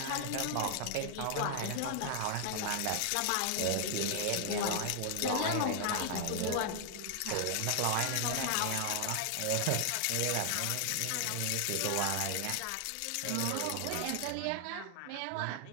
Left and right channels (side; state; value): both; different; correlation 0.00